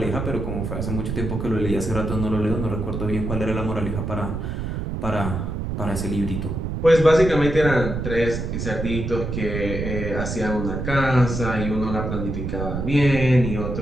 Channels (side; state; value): right; noise; rumble, 4 dB below the sound